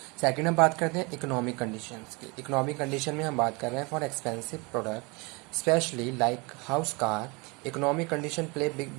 सेकंड हम बात करते हैं इकोनॉमिक कंडीशंस की। इकोनॉमिक कंडीशन में हम बात कर रहे हैं for expensive product specially like house car, economic condition play big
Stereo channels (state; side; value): quieter; left; 27.8 dB